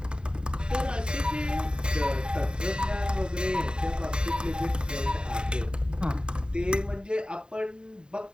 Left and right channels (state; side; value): late; left; 0.049 ms